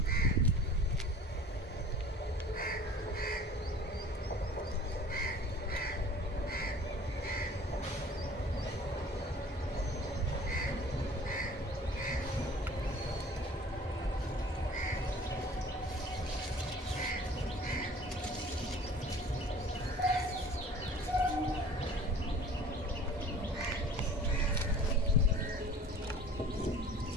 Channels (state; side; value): normal; both; correlation 0.46